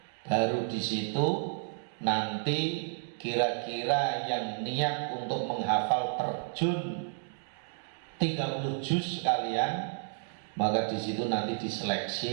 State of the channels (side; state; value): left; silent; digital silence